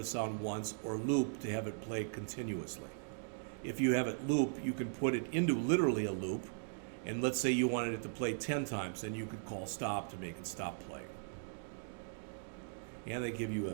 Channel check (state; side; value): silent; left; digital silence